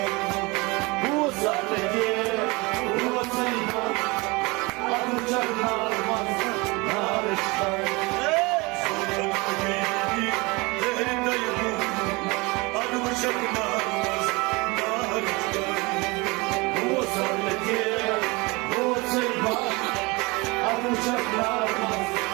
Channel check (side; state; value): left; quieter; 25.4 dB